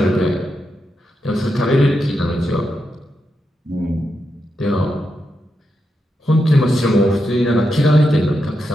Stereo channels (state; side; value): normal; both; correlation 0.85